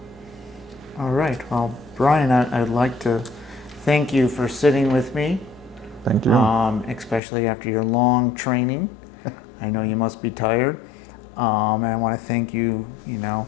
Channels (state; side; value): drops out; right; at 7.2 s